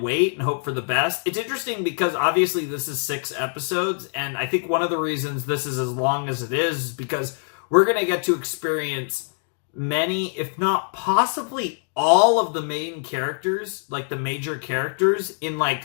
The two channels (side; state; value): right; silent; digital silence